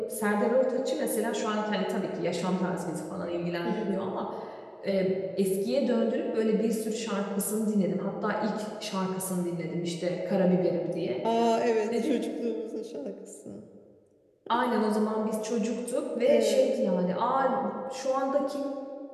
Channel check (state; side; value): identical; both; correlation 1.00